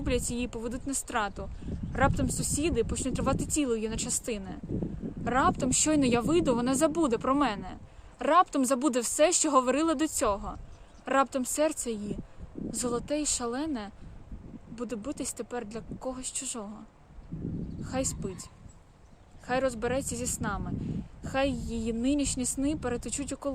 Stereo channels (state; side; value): identical; both; correlation 1.00